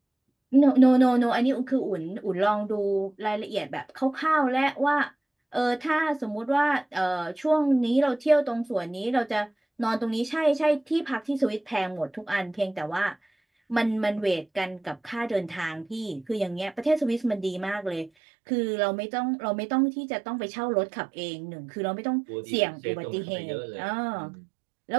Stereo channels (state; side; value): drops out; left; at 18.1 s